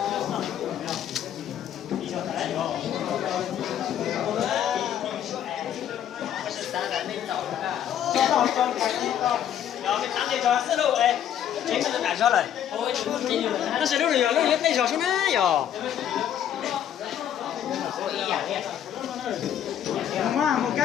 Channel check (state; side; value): quieter; right; 10.1 dB